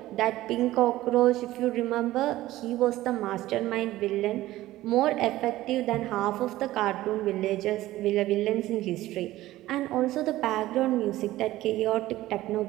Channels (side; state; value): left; quieter; 16.0 dB